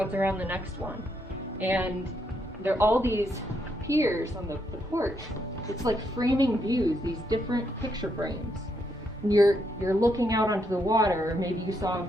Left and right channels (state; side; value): normal; both; correlation 0.77